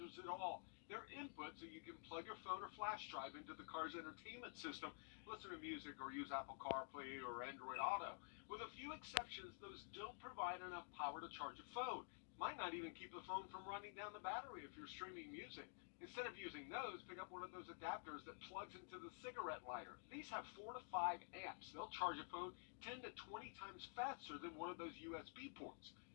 at all. They're inputs so you can plug your phone or flash drive into the car's entertainment system, listen to music, or use Apple CarPlay or Android Auto. With a few exceptions, those don't provide enough power to charge a phone. Might not even keep the phone from running down the battery if you're streaming music. Instead of using those, pick up one of those adapters that plugs into the cigarette lighter. These have 4 to 5 amps. They'll charge a phone 10 to 20 times faster than one of those USB ports.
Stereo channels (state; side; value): silent; right; digital silence